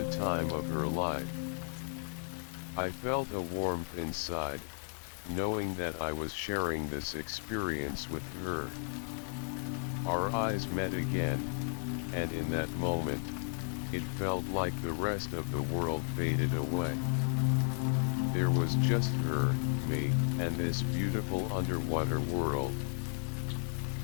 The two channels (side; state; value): right; silent; 55 dB below the other